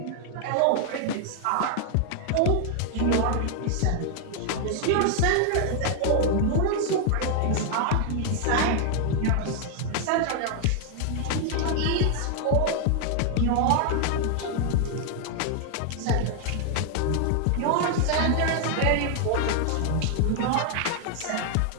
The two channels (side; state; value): both; different; correlation 0.00